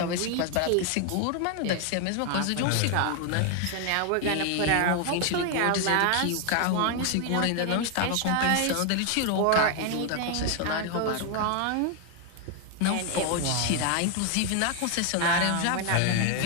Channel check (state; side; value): different; both; correlation 0.00